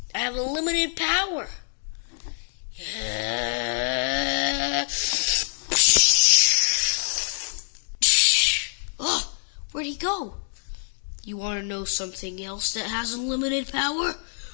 I have unlimited power. Oh, where'd he go? You want to know something else that has unlimited power?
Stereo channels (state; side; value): silent; right; digital silence